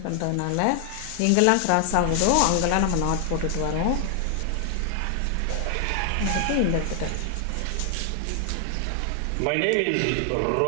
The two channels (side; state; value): both; different; correlation 0.00